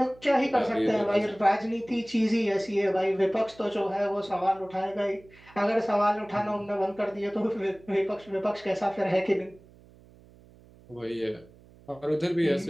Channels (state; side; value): noise; right; hum, 25 dB below the sound